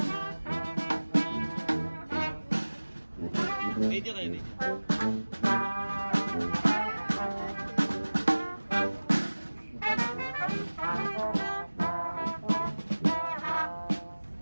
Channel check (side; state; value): both; inverted; correlation -1.00